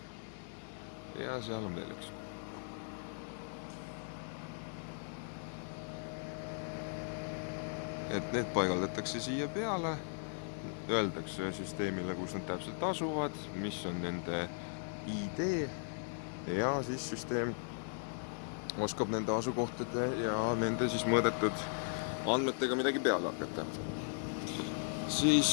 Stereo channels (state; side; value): silent; right; 53 dB below the other